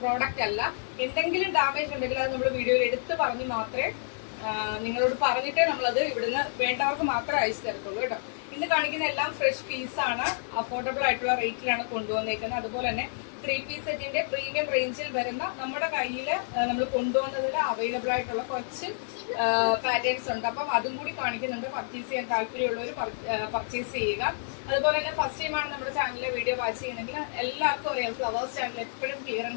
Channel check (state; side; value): silent; right; digital silence